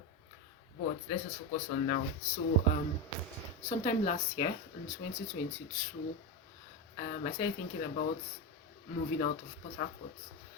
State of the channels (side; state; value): both; normal; correlation 0.14